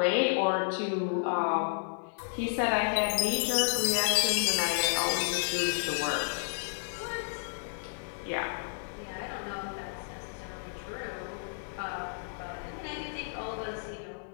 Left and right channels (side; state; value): right; silent; digital silence